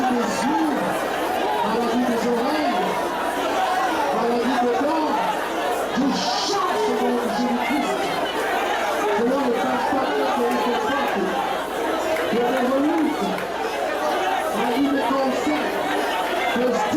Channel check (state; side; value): identical; both; correlation 1.00